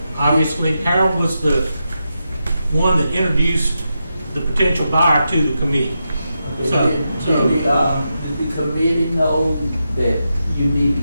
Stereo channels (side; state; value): both; inverted; correlation -0.87